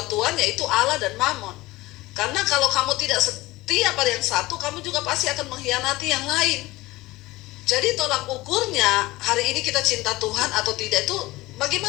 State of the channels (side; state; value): right; quieter; 19.6 dB